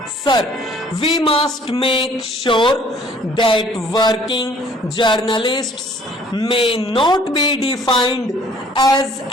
Sir, we must make sure that working journalists may not be defined as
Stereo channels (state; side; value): normal; both; correlation 0.57